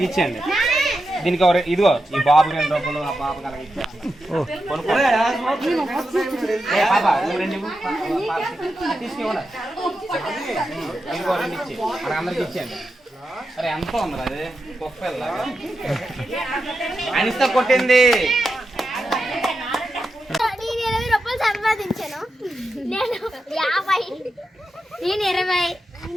ఇచ్చేయండి. దీనికి ఇదిగో ఈ బాబు 2 రూపాయలు, ఆ పాప తీసుకోండి. ఇదిగో 2 ఇచ్చి అక్కడ అందరికి ఇచ్చేయండి. అరే ఎంత ఉంది అది కుక్కలాగా అనిస్తా కొట్టింది. సంపాదించాను నేను 50, నేను 20,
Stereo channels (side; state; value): both; normal; correlation 0.88